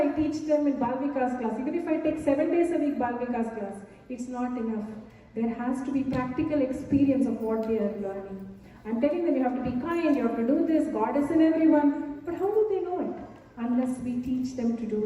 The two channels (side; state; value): both; identical; correlation 1.00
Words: teach them in Bal Vikas class, even if I take 7 days a week Bal Vikas class, it's not enough. There has to be practical experience of what they are learning. I'm telling them you have to be kind, you have to do this, God is in everyone. But how do they know it? Unless we teach them to